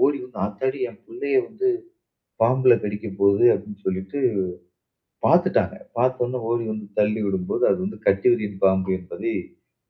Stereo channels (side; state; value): both; identical; correlation 1.00